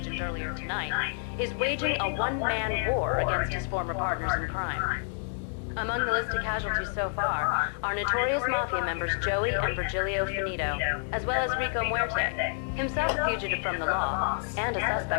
earlier tonight, is waging a one-man war against his former partners in crime. Among the list of casualties so far are notorious mafia members Joey and Virgilio Finito, as well as Rico Muerte, himself a fugitive from the law, and a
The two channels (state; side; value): silent; right; digital silence